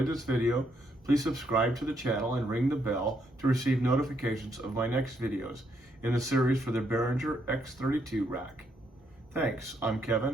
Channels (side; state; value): both; normal; correlation 0.75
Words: this video, please subscribe to the channel and ring the bell to receive notifications of my next videos in the series for the Behringer X32 Rack. Thanks, I'm